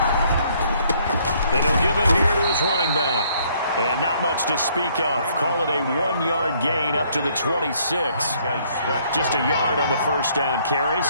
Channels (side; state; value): both; inverted; correlation -0.65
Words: And he'll give it here to his running back. And not much to speak of. Call it a 1-yard gain up to the 26. Just a yard on the first down carry,